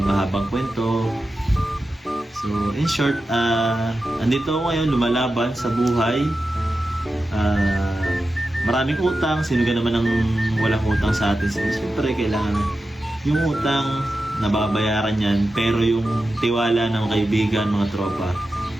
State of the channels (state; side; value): normal; both; correlation 0.91